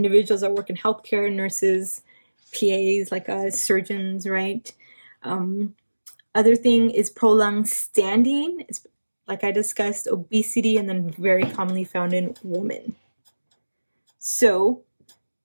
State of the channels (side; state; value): both; inverted; correlation -1.00